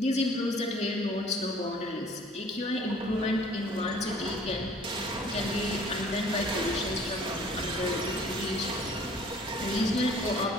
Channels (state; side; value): normal; both; correlation 0.53